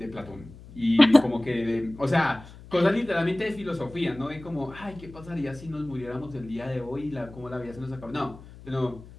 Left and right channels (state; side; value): noise; left; hum, 18 dB below the sound